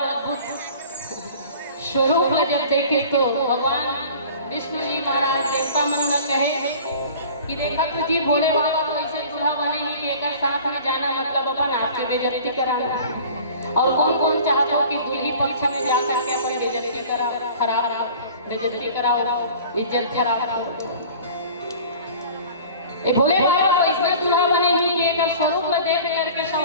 अद्भुत स्वरूप जब देखे तो भगवान विष्णु जी महाराज देवता मन न कहे कि देखा तो जी भोले बाबा तो ऐसे दूल्हा बने ही कि एक साथ में जाना मतलब अपन आपकी बेइज्जती कराना, और कौन कौन चाहता हो कि दूल्ही पक्ष में जाकर के अपन बेइज्जती करा, खराब बेइज्जती कराओ, इज्जत खराब। ये भोले बाबा को इसमें दूल्हा बने ही कि एक स्वरूप में देख करके सब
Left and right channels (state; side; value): inverted; both; correlation -0.44